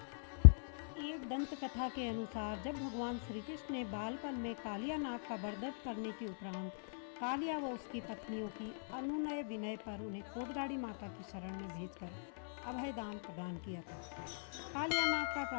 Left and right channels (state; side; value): silent; right; 50 dB below the other